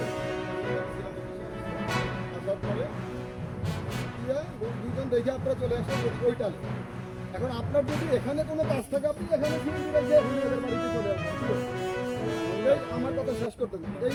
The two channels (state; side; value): identical; both; correlation 1.00